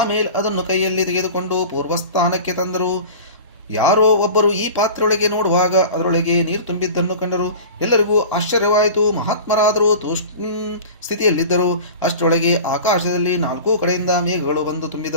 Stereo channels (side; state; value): both; inverted; correlation -0.36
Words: ಅದನ್ನು ಕೈಯಲ್ಲಿ ತೆಗೆದುಕೊಂಡು ಪೂರ್ವಸ್ಥಾನಕ್ಕೆ ತಂದರು. ಯಾರೋ ಒಬ್ಬರು ಈ ಪಾತ್ರೆಯೊಳಗೆ ನೋಡುವಾಗ ಅದರೊಳಗೆ ನೀರು ತುಂಬಿದ್ದನ್ನು ಕಂಡರು. ಎಲ್ಲರಿಗೂ ಆಶ್ಚರ್ಯವಾಯಿತು. ಮಹಾತ್ಮರಾದರೂ ತೂಷ್ಣ ಸ್ಥಿತಿಯಲ್ಲಿದ್ದರು. ಅಷ್ಟರೊಳಗೆ ಆಕಾಶದಲ್ಲಿ 4 ಕಡೆಯಿಂದ ಮೇಘಗಳು ಬಂದು